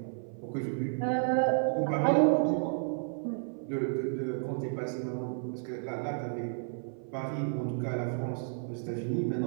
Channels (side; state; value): left; silent; 56 dB below the other